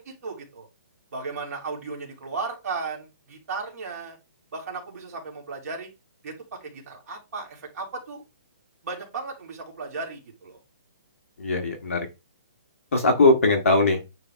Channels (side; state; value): both; inverted; correlation -0.46